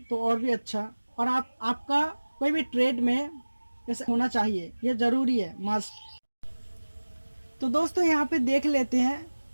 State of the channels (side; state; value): both; inverted; correlation -1.00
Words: तो और भी अच्छा। और आपका कोई भी ट्रेड में जैसे होना चाहिए, ये ज़रूरी है, मस्ट। तो दोस्तों यहाँ पे देख लेते हैं